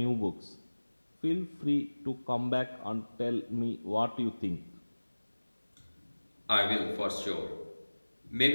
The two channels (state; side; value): inverted; both; correlation -1.00